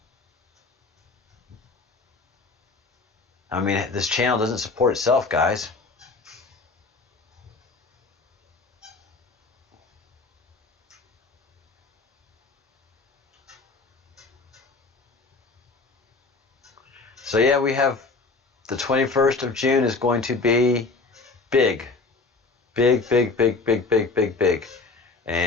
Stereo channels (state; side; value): quieter; right; 3.9 dB